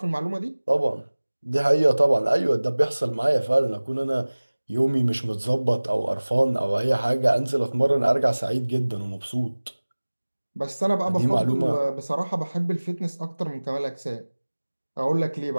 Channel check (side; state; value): both; inverted; correlation -1.00